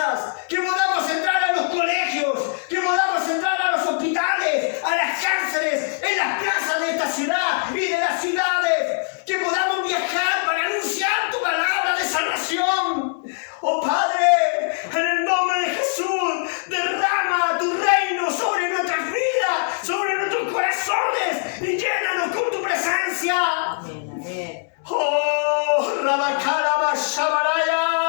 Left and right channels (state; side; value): silent; right; digital silence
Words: que podamos entrar a los colegios, que podamos entrar a los hospitales, a las cárceles, en las plazas de esta ciudad y de las ciudades. Que podamos viajar para anunciar tu palabra de salvación. Oh Padre, en el nombre de Jesús, derrama tu reino sobre nuestras vidas, sobre nuestros corazones y llénanos con tu presencia. Amén, amén. Oh, Rabacaraba